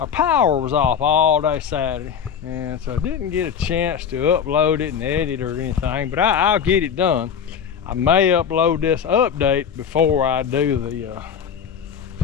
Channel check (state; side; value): quieter; right; 7.6 dB